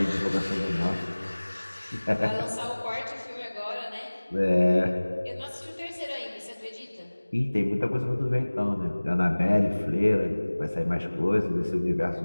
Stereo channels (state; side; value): inverted; both; correlation -1.00